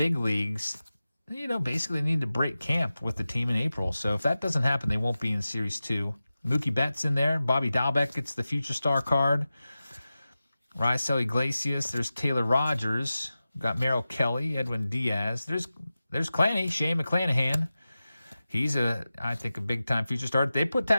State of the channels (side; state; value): both; inverted; correlation -0.94